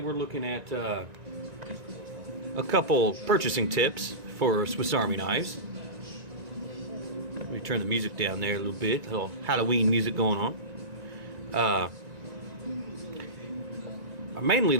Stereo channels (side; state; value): left; late; 1.9 ms